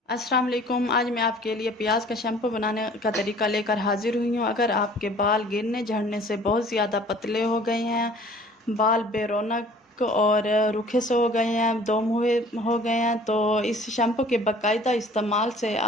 अस्सलाम वालेकुम। आज मैं आपके लिए प्याज का शैम्पू बनाने का तरीका लेकर हाजिर हुई हूँ। अगर आपके बाल गिरने झड़ने से बहुत ज़्यादा पतले हो गए हैं, बाल बेरौनक और रूखे से हो गए हैं, दम हुए हो गए हैं, तो इस शैम्पू के बाकायदा इस्तेमाल से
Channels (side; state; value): both; normal; correlation 0.51